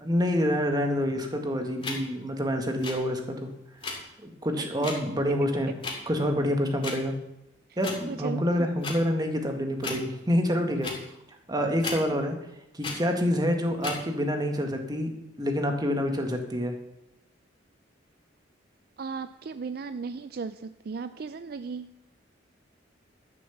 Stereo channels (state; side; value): normal; both; correlation 0.69